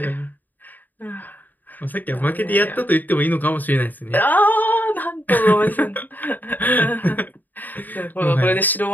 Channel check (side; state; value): right; late; 0.086 ms